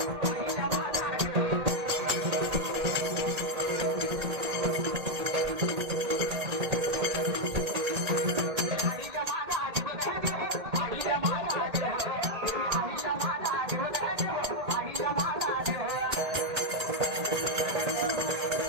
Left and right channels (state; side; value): late; left; 1.8 ms